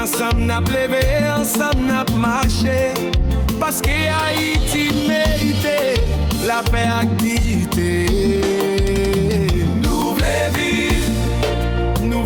n'a levé, ensemble n'a marché. Parce que Haïti mérite la paix et dignité. Nous voulons vivre, nous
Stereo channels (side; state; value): both; identical; correlation 1.00